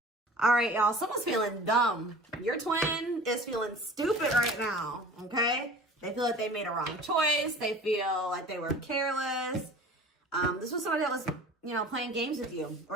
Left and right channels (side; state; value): both; normal; correlation 0.42